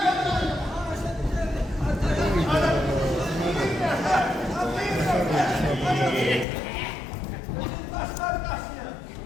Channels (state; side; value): drops out; right; at 6.5 s